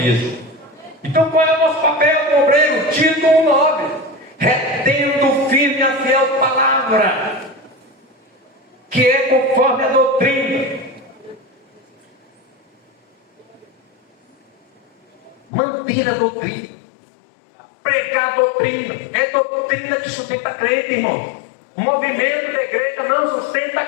Então, qual é o nosso papel como obreiro? Tito 1:9. Retendo firme a fiel palavra, que é conforme a doutrina. Manter a doutrina, pregar a doutrina, é doutrina que sustenta crente, irmão. O movimento da igreja não sustenta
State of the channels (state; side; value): drops out; right; at 15.4 s